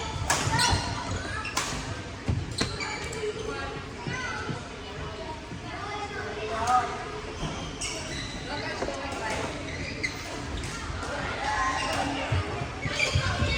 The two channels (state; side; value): identical; both; correlation 1.00